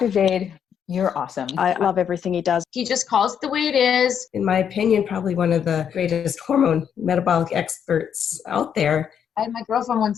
Jade, you're awesome. I love everything he does. He just calls it the way it is. In my opinion, probably one of the greatest hormone metabolic experts out there. I had my girlfriend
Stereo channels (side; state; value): right; quieter; 8.2 dB